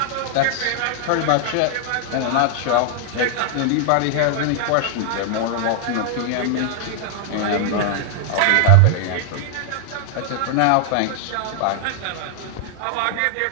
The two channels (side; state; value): both; different; correlation 0.00